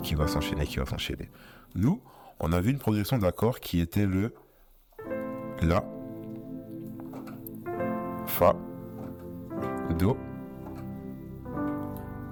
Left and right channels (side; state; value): both; identical; correlation 1.00